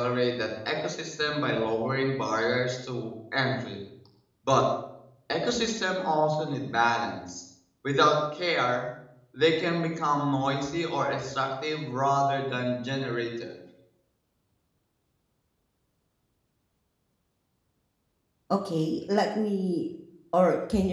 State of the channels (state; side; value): identical; both; correlation 1.00